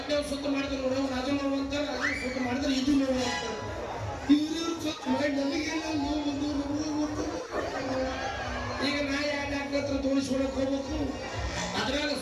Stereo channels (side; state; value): both; identical; correlation 1.00